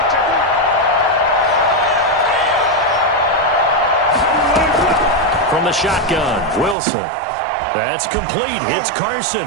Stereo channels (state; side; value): drops out; left; at 6.8 s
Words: From the shotgun, Wilson. That's complete. Hits Carson